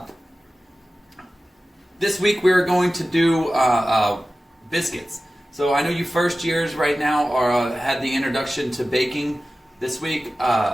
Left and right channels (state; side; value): normal; both; correlation 0.95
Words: This week we're going to do biscuits. So I know you first years right now had the introduction to baking this week.